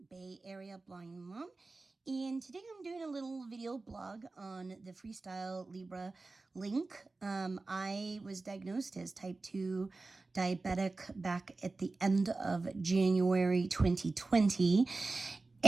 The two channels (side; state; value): left; quieter; 3.5 dB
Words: Bay Area Blind Mom, and today I'm doing a little video blog on the FreeStyle Libre link. I was diagnosed as type 2 diabetic back at the end of January 2020.